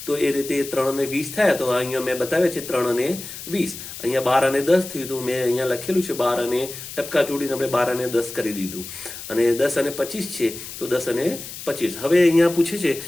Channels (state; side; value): noise; left; hiss, 11 dB below the sound